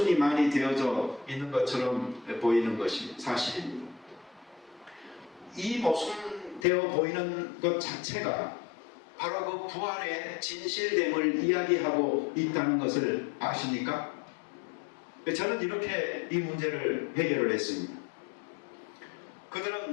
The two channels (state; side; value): drops out; right; at 6.7 s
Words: 많이 되어져 있는 것처럼 보이는 것이 사실입니다. 이 모순되어 보이는 것 자체가 바로 그 부활의 진실됨을 이야기하고 있다는 것을 아십니까? 저는 이렇게 이 문제를 해결을 했습니다.